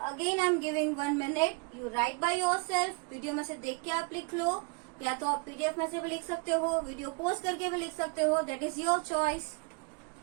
again I am giving 1 minute, you right by yourself. Video में से देख के आप लिख लो, या तो आप PDF में से भी लिख सकते हो, वीडियो पोस्ट करके भी लिख सकते हो, that is your choice.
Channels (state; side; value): quieter; left; 31.6 dB